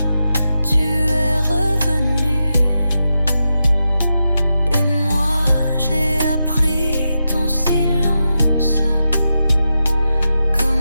tu es revenu. Et moi j'ai appris ton silence,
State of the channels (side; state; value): both; inverted; correlation -0.88